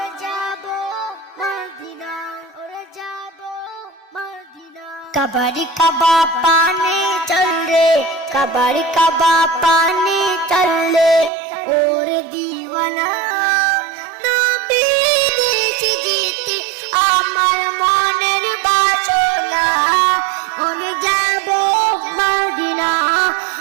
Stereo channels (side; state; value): left; drops out; at 11.3 s